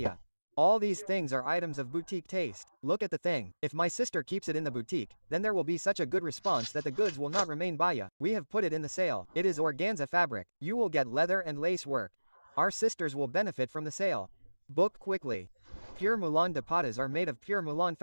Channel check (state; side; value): inverted; both; correlation -1.00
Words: All these things are items of boutique taste. Look at the thing. If my sister keeps it in the boutique, then there will be such a good response that the goods will not remain baya. We have put it in the sale. It is organza fabric. You will get leather and lace work. Our sisters will benefit from the sale. Book quickly. Pure Mulan dupattas are made of pure Mulan